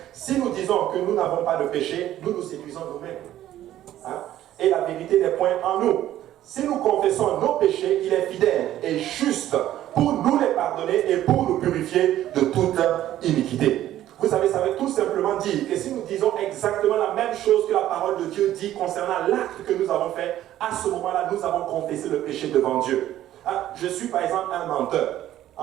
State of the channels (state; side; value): quieter; left; 12.9 dB